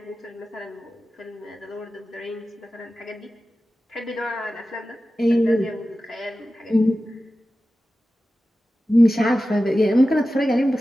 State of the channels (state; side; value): normal; both; correlation 0.94